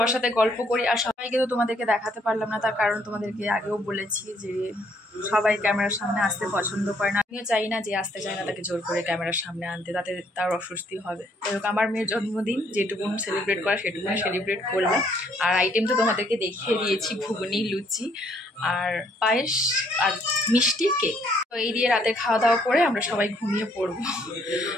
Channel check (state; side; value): normal; both; correlation 0.67